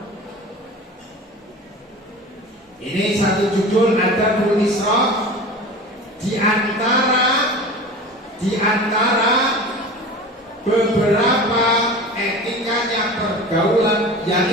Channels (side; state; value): both; normal; correlation 0.35